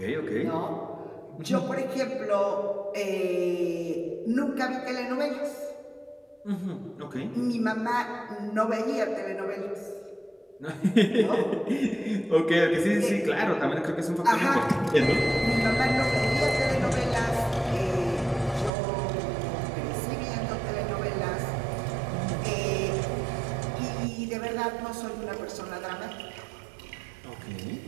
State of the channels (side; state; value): left; drops out; at 18.7 s